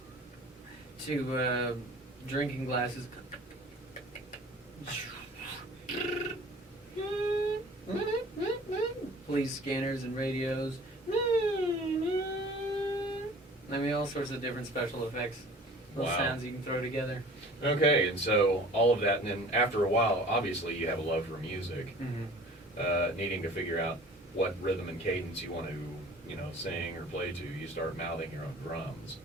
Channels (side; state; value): both; normal; correlation 0.46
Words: to drinking glasses. Police scanners and radios. All sorts of different special effects. Little Wow. sounds you can throw together. Okay, and so all of that, and then after a while, obviously you have a love for music, needing to figure out what rhythm and cadence you want to, sing or play to. You start mouthing your own drums.